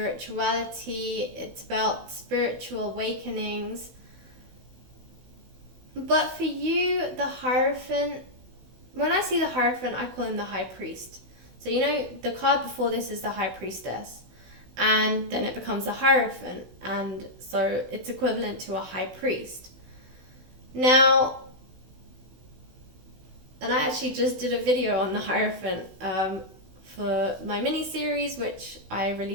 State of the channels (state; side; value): late; left; 16 ms